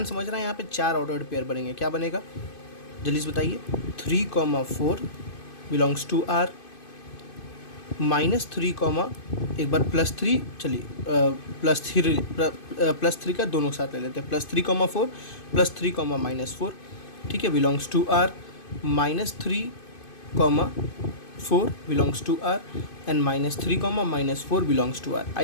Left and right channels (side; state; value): right; late; 2.5 ms